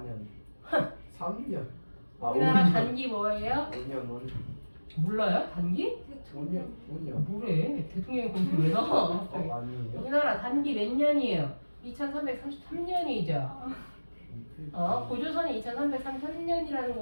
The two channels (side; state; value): both; inverted; correlation -1.00